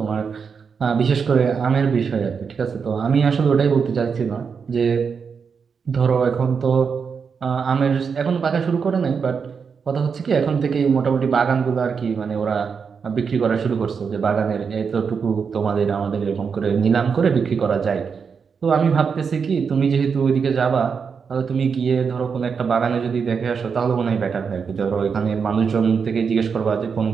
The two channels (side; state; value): left; quieter; 6.0 dB